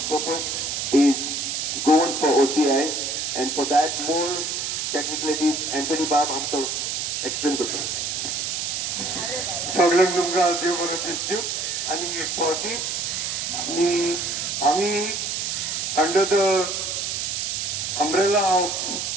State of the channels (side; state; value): right; noise; hiss, 2 dB below the sound